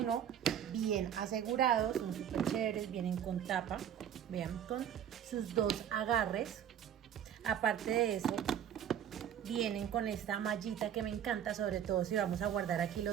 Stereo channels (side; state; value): left; quieter; 9.6 dB